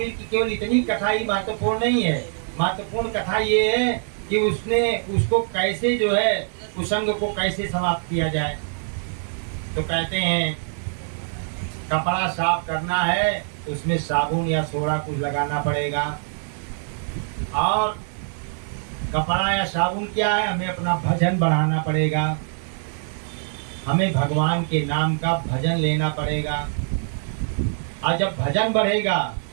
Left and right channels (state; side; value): silent; left; 63 dB below the other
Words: की केवल इतनी कथा ही महत्वपूर्ण नहीं है। महत्वपूर्ण कथा ये है कि उसने उसको कैसे जो है कुसंग को कैसे समाप्त किया जाए। तो कहते हैं कपड़ा साफ करना है तो उसमें साबुन या सोडा कुछ लगाना पड़ेगा। और कपड़ा या साबुन क्या है, हमें अपना भजन बढ़ाना पड़ेगा, हमें भगवान के नाम का भजन लेना पड़ेगा। और जब भजन बढ़ेगा